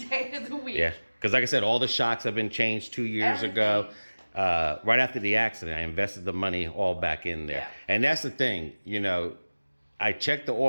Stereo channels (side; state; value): both; inverted; correlation -1.00